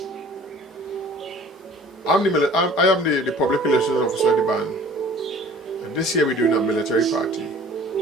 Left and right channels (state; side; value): normal; both; correlation 0.49